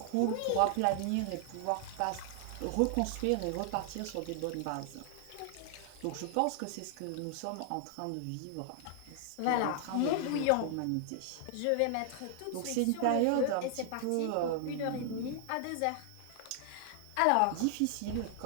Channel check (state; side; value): different; both; correlation 0.00